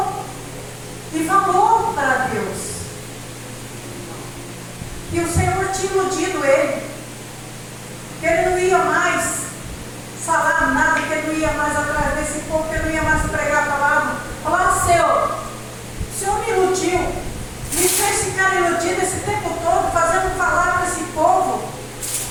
e falou para Deus que o Senhor tinha iludido ele, que ele não ia mais falar nada, que ele não ia mais atrás desse povo, que ele não ia mais pregar a palavra. Falar: o Senhor me iludiu, me fez ficar iludido esse tempo todo, fazendo falar para esse povo,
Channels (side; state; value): both; identical; correlation 1.00